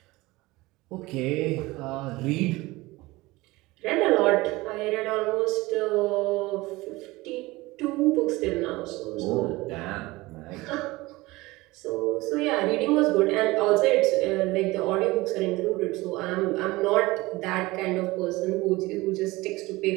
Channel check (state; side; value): quieter; left; 20.7 dB